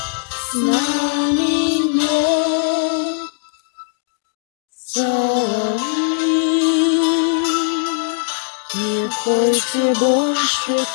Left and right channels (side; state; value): right; silent; digital silence